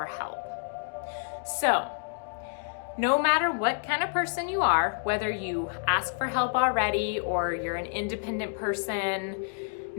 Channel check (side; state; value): right; silent; digital silence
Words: help. So, no matter what kind of person you are, whether you ask for help already or you're an independent person,